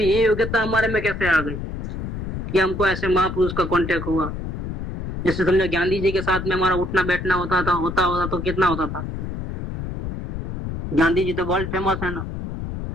ये योग्यता हमारे में कैसे आ गई कि हमको ऐसे महापुरुष का कांटेक्ट हुआ। जैसे समझो गांधी जी के साथ में हमारा उठना बैठना होता तो कितना होता था। गांधी जी तो वर्ल्ड फेमस है ना,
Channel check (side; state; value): left; noise; rumble, 5 dB below the sound